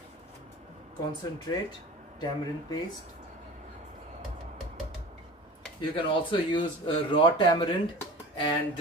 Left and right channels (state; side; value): normal; both; correlation 0.38